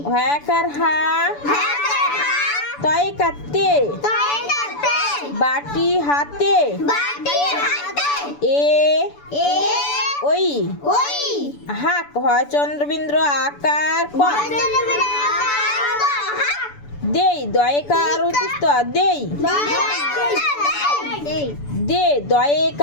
হ্যাকার হা তয়কার তে বাটি হাতে এ ওই হাক হয় চন্দ্রবিন্দ্র আকার ক দেই দয়কার উত্তস্ত দেই দে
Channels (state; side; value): late; right; 6.9 ms